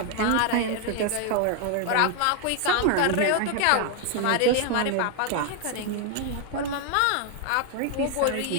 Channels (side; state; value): both; different; correlation 0.01